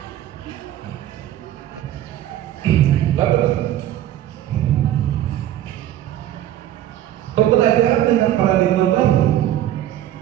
Bapak, pembelajaran dengan paradigma baru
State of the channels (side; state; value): left; quieter; 12.5 dB